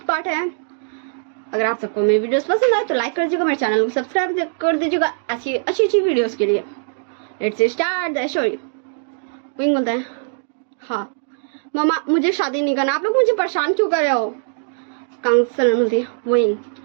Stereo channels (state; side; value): silent; left; digital silence